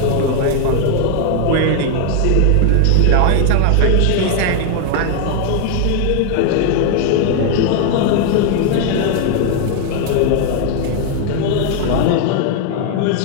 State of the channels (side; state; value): both; different; correlation 0.00